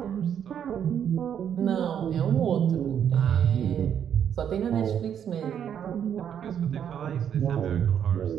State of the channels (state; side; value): quieter; left; 8.9 dB